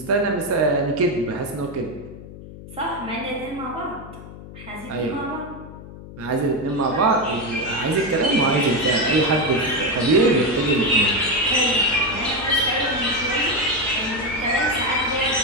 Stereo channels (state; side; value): noise; left; hum, 15 dB below the sound